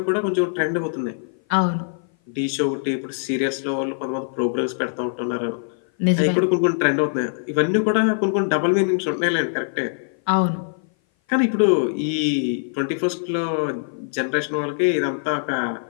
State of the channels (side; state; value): right; silent; 57 dB below the other